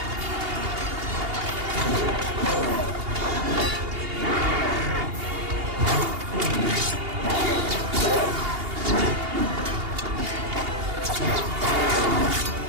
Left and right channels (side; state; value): left; late; 2.8 ms